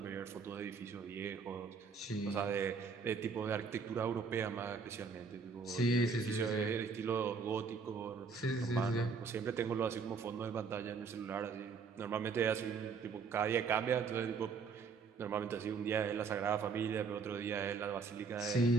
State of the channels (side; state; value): left; quieter; 5.1 dB